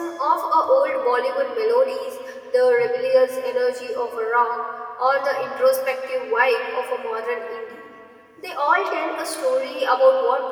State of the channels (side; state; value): both; identical; correlation 1.00